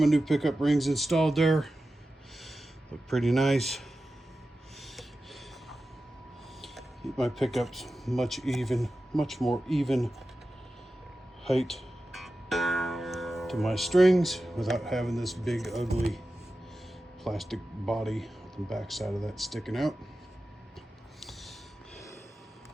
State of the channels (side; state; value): both; normal; correlation 0.93